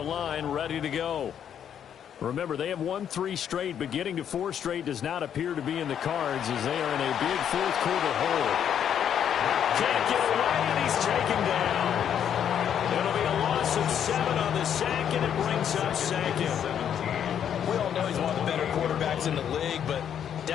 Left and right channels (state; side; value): quieter; right; 9.0 dB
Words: line, ready to go. Remember, they have won 3 straight, but getting to 4 straight does not appear to be in the cards as they are in a big 4th quarter hole. Can't get away, and he's taken down. It'll be a loss of 7 on the sack, and it brings up 2nd. We all know he's one of the better quarterbacks in the league, but